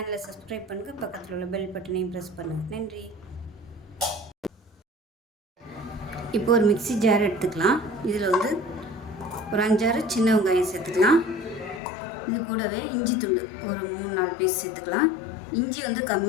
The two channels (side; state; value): right; drops out; at 11.8 s